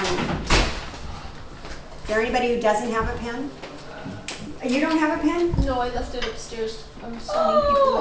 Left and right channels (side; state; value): both; identical; correlation 1.00